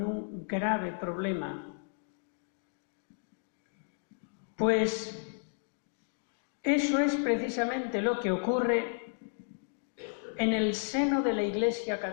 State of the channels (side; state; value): right; silent; digital silence